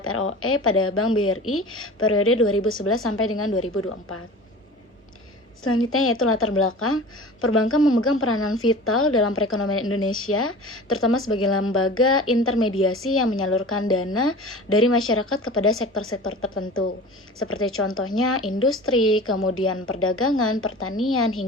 ROE pada Bank BRI periode 2011 sampai dengan 2024. Selanjutnya yaitu latar belakang. Perbankan memegang peranan vital dalam perekonomian Indonesia, terutama sebagai lembaga intermediasi yang menyalurkan dana dari masyarakat kepada sektor-sektor tertentu, seperti contohnya industri, kemudian perdagangan, pertanian,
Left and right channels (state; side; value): normal; both; correlation 0.38